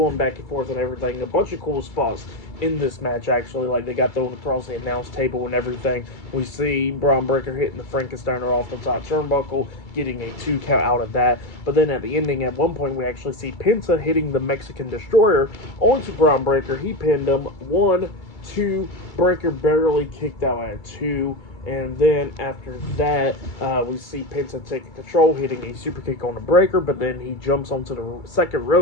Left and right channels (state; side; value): late; right; 2.3 ms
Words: back and forth and everything. A bunch of cool spots in this match, actually. Like, they got thrown across the announce table and everything. We see Bron Breakker hitting the Frankensteiner off the top turnbuckle, getting a 2 count out of that. But then at the ending, at one point, we actually see Penta hitting the Mexican Destroyer onto Bron Breakker. He pinned him. 1, 2, Breakker barely kicked out at 2. And then after that, we see Penta taking control, hitting a super kick on the Breakker, but then he jumps onto the second